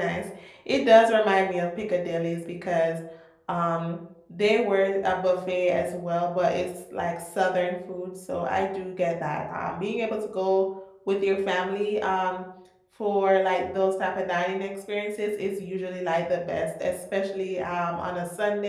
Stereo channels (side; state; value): both; identical; correlation 1.00